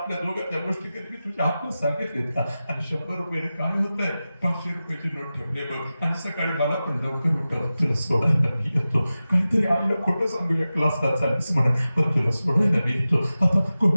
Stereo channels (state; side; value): inverted; both; correlation -0.95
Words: दोघं त्या गोष्टी कधी मी तुझ्या हातला सांगितलेत का. आणि 100 रुपये काय होत आहे, 500 रुपयाची नोट ठेवले बघ, आणि सकाळी मला पण लवकर उठव, तुला सोडायला मी येतो. काहीतरी आईला खोटं सांगूया क्लासला चालीस म्हणून, पण तुला सोडायला मी येतो. आता